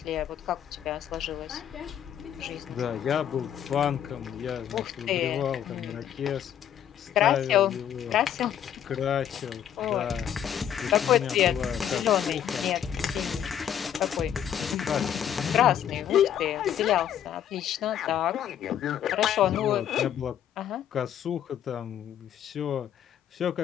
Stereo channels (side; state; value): right; quieter; 9.8 dB